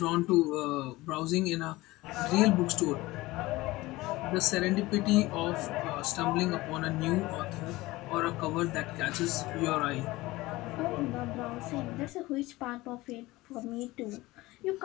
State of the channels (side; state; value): right; quieter; 19.7 dB